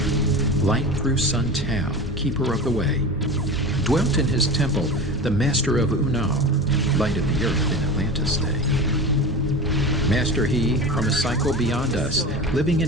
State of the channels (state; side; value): normal; both; correlation 0.30